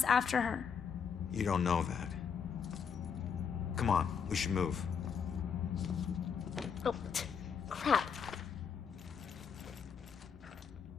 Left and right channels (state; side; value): quieter; right; 6.8 dB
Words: after her. You don't know that. Come on, we should move. Oh, crap.